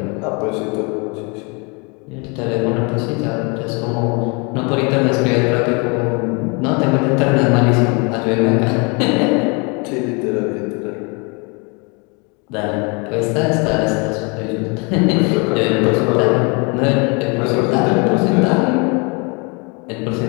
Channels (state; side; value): quieter; right; 31.6 dB